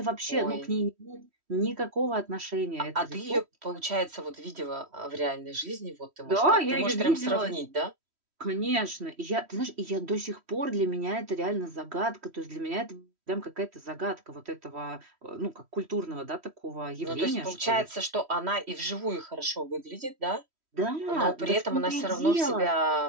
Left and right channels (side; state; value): left; late; 3.1 ms